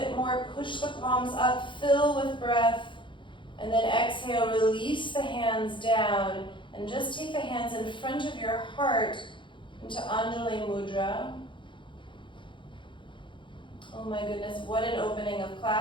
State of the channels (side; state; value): right; late; 0.24 ms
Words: more. Push the palms up, fill with breath. And then exhale, release the hands down. And just take the hands in front of your heart into Anjali Mudra. Oh my goodness, what an opening of